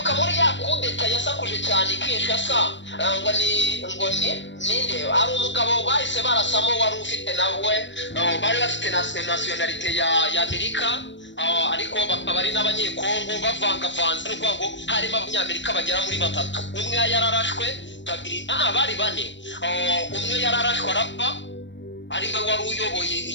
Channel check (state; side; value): late; right; 0.53 ms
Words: muri ya kudeta yasakuje cyane Kinshasa ngo ninde ari umugabo bahise barasamo wari ufite nawe bari bafite nationality ya Amerika ariko bakaba ari n'abanyekongo bavangavanze n'uko ngo harimo abanyamerika bagera muri batatu umwe yararashwe babiri bari bane umwe yararashwe arapfa ari we wari uyoboye